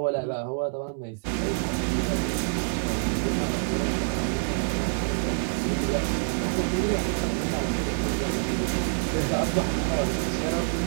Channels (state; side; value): silent; left; 60 dB below the other